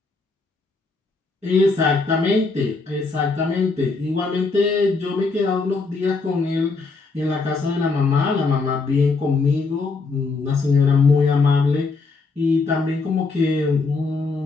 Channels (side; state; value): right; quieter; 4.1 dB